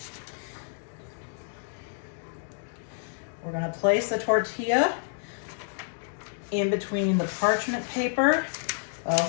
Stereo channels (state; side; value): silent; right; digital silence